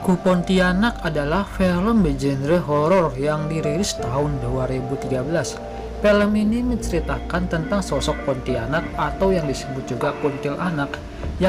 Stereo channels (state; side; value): identical; both; correlation 1.00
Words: Pontianak adalah film bergenre horor yang dirilis tahun 2013. Film ini menceritakan tentang sosok Pontianak atau yang disebut juga kuntilanak